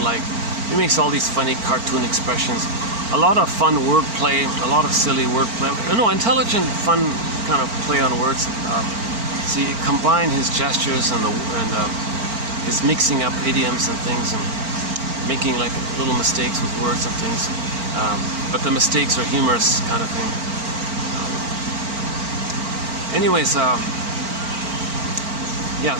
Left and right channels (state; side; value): late; left; 4.4 ms